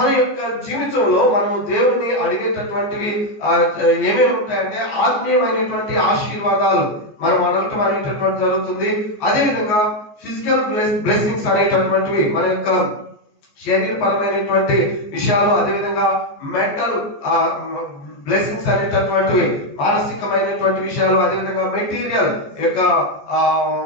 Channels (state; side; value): late; right; 14 ms